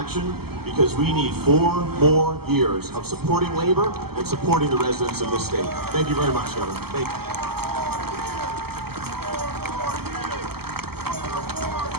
because we need 4 more years of supporting labor and supporting the residents of this state. Thank you very much, Governor. Thank you.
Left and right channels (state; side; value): late; left; 0.96 ms